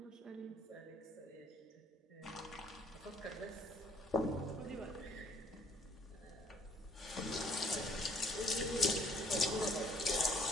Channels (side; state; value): both; normal; correlation 0.62